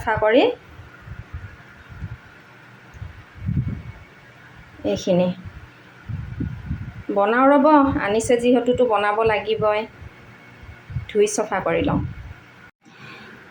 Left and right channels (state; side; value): identical; both; correlation 1.00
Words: কৰি। এইখিনি বনাওঁ ৰ'ব, আনিছে যিহেতুতো বনাব লাগিবই। ধুই চফা কৰি লওঁ।